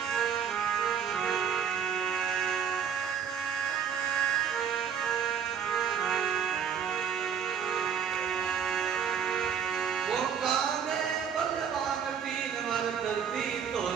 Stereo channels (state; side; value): quieter; left; 7.7 dB